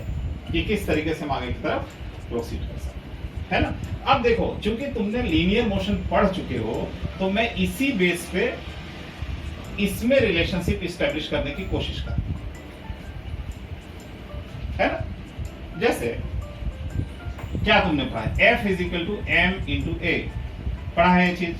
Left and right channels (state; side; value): identical; both; correlation 1.00